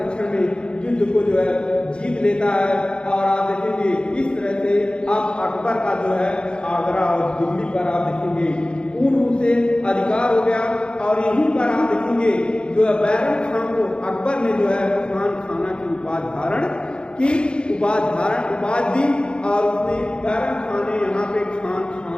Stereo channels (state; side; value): late; right; 0.052 ms